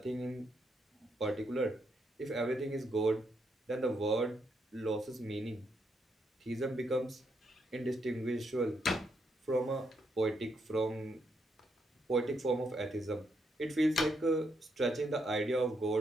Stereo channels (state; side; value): normal; both; correlation 0.78